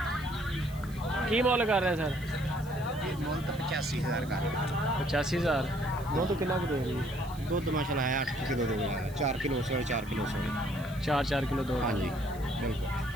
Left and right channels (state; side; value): noise; right; hiss, 21 dB below the sound